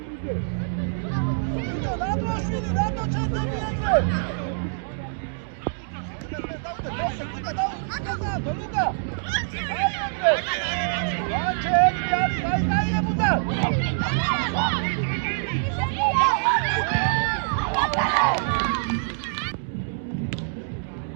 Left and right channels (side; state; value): left; silent; digital silence